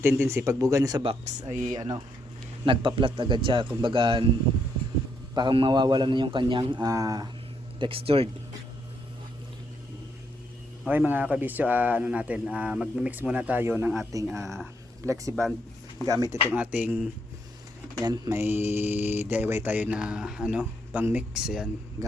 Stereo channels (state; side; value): normal; both; correlation 0.76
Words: tendency pag buga niya sa box ay nagpa-flat agad siya, kumbaga parang mawawala na yung kanyang textured. Okay mga kabisyo, mag-mix muna tayo ng ating flexiband gamit itong ating yan, may DIY tayo na pang mix, yan,